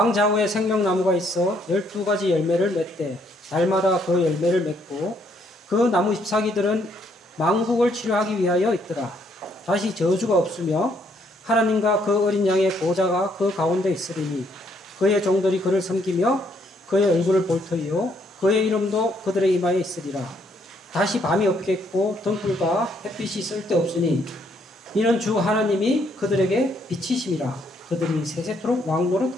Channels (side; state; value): both; normal; correlation 0.70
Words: 좌우에 생명나무가 있어 12가지 열매를 맺되 달마다 그 열매를 맺고 그 나무 잎사귀들은 망국을 치료하기 위하여 있더라. 다시 저주가 없으며 하나님과 그 어린 양의 보좌가 그 가운데 있으리니 그의 종들이 그를 섬기며 그의 얼굴을 볼 터이요 그의 이름도 그들의 이마에 있으리라. 다시 밤이 없겠고 등불과 햇빛이 쓸데없으니 이는 주 하나님이 그들에게 빛이심이라. 그들이 세세토록